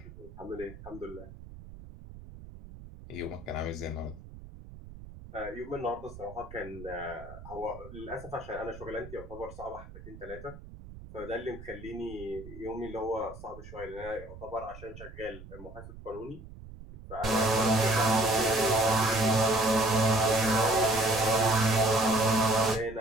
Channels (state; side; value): noise; right; rumble, 16 dB below the sound